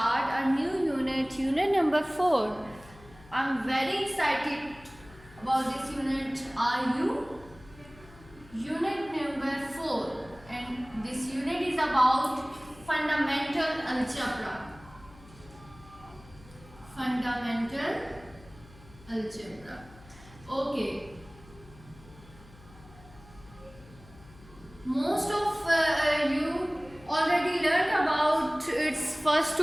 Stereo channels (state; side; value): noise; left; hum, 22 dB below the sound